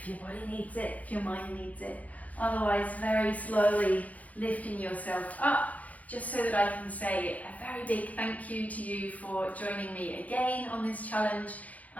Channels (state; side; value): late; right; 0.073 ms